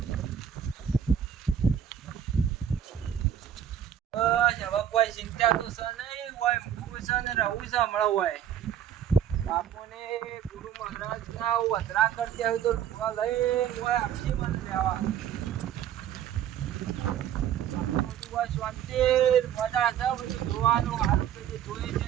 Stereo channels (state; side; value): quieter; left; 9.6 dB